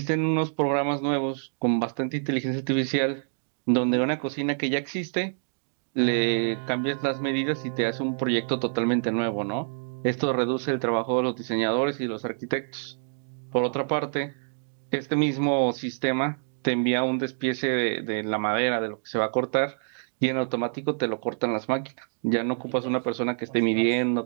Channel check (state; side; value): silent; left; digital silence